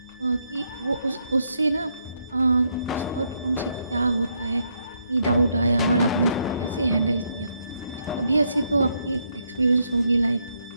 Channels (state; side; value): inverted; both; correlation -0.77